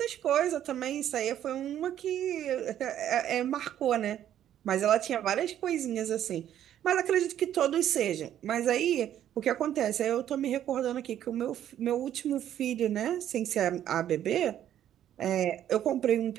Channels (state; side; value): quieter; left; 11.0 dB